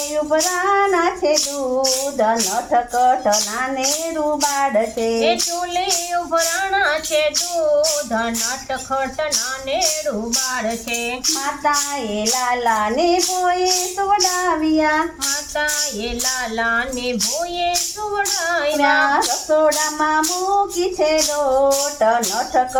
ઉભરાના છે દૂધ, નટખટ નાનેરું બાળ છે, ચૂલે ઉભરાણા છે દૂધ, નટખટ નાનેરું બાળ છે. માતાએ લાલાને ભોએ સુવડાવ્યા, માતાએ લાલાને ભોએ સુવડાવ્યા, રસોડામાં મૂકી છે લોટ,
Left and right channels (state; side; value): identical; both; correlation 1.00